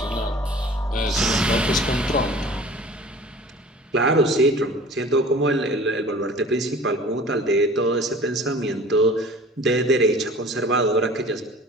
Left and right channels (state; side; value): normal; both; correlation 0.44